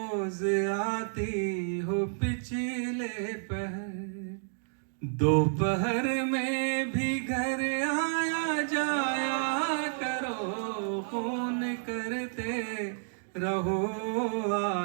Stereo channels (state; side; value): silent; left; digital silence